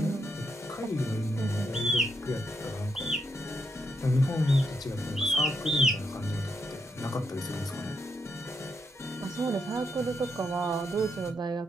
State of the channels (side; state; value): both; normal; correlation 0.79